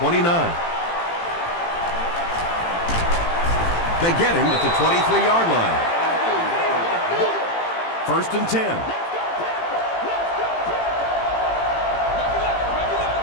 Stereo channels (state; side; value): late; right; 18 ms